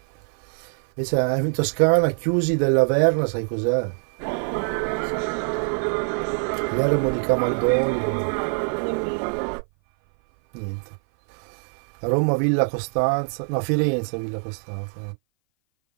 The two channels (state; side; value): silent; left; 57 dB below the other